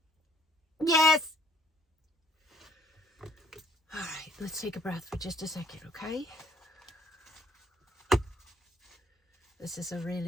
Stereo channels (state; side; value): normal; both; correlation 0.61